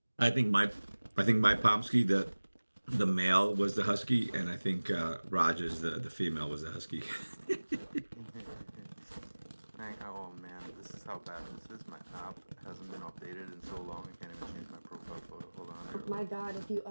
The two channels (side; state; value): both; inverted; correlation -1.00